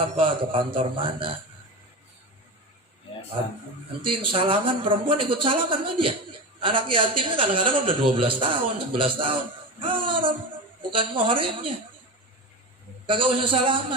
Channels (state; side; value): normal; both; correlation 0.24